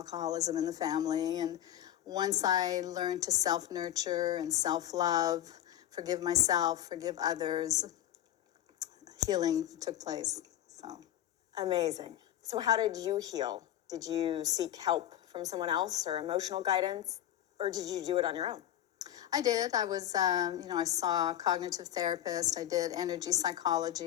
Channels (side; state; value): right; quieter; 12.1 dB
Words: in the family. And once I learned to self-nurture and self-love, forgive myself, forgive others, healing took place. So Amazing. So how did you heal? Did you seek help from someone else or emotional guidance, or did you do it on your own? I did. I was, I saw a cognitive therapist. I did energy